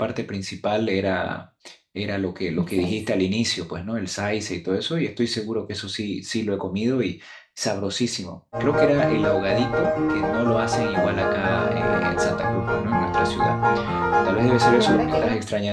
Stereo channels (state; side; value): identical; both; correlation 1.00